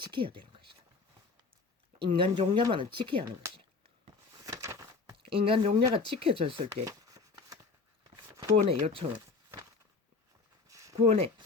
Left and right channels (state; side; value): quieter; right; 4.4 dB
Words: 되는 것이다. 인간 종자만은 지켜야 하는 것이다. 인간 종자가 지켜졌을 때 구원의 요청을 구원의